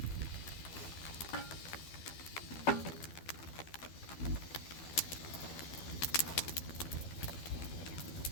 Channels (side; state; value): right; late; 12 ms